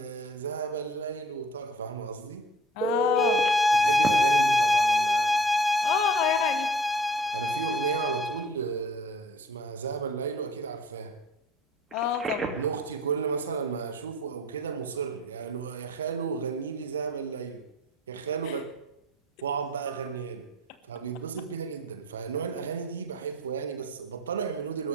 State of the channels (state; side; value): normal; both; correlation 0.50